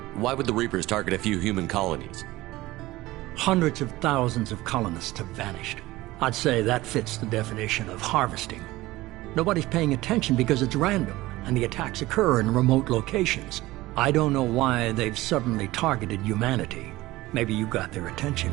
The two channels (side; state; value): left; quieter; 18.3 dB